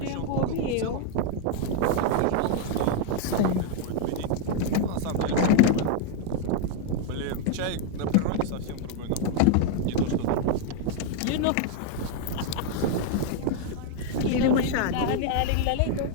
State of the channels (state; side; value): different; both; correlation 0.00